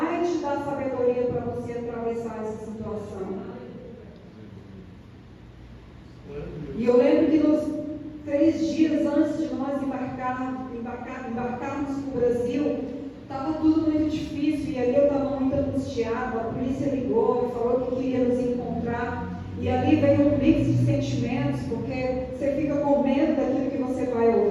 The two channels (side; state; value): both; identical; correlation 1.00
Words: te dar sabedoria para você atravessar essa situação. E eu lembro que nos 3 dias antes de nós embarcarmos para o Brasil, estava tudo muito difícil, e ali eu estava muito angustiada. A polícia ligou e falou que queria nos encontrar, e ali veio um mix de sentimentos, porque você fica com medo daquilo que você vai